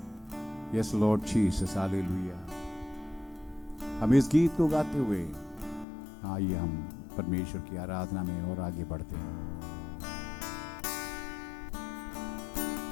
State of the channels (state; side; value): drops out; right; at 5.9 s